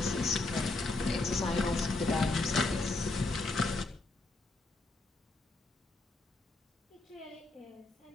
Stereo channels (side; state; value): right; quieter; 3.2 dB